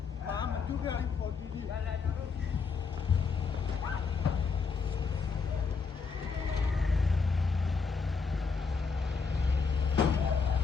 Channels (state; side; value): quieter; right; 5.1 dB